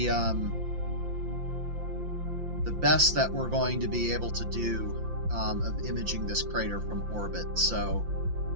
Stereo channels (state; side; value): late; left; 5.8 ms